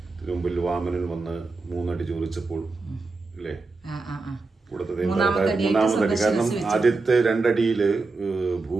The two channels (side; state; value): left; quieter; 3.8 dB